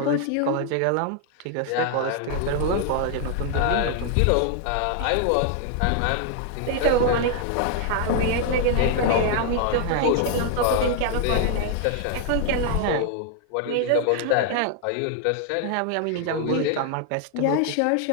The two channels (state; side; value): different; both; correlation 0.00